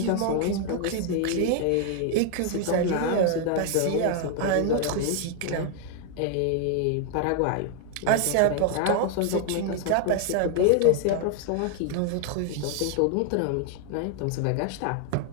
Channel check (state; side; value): different; both; correlation 0.00